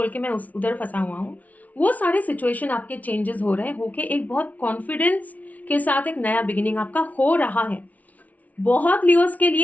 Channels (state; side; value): late; right; 0.071 ms